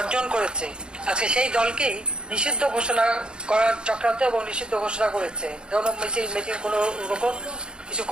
করেছে, আজকে সেই দলকেই নিষিদ্ধ ঘোষণা করার চক্রান্ত এবং নিষিদ্ধ ঘোষণা করেছে। মিছিল কোনো রকম কিছু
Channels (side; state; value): left; late; 0.049 ms